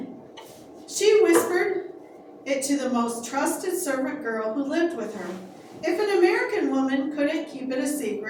She whispered it to the most trusted servant girl who lived with her. If an American woman couldn't keep it a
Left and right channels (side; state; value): both; identical; correlation 1.00